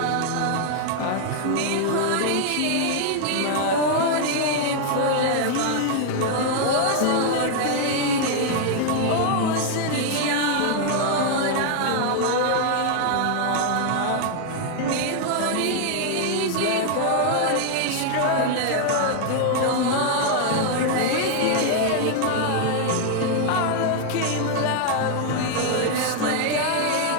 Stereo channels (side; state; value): both; different; correlation 0.00